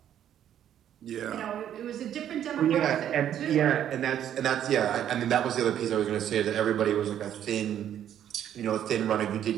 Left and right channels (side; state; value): left; quieter; 10.4 dB